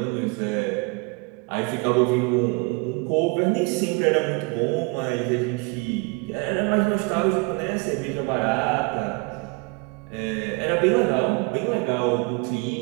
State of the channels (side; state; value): left; quieter; 29.4 dB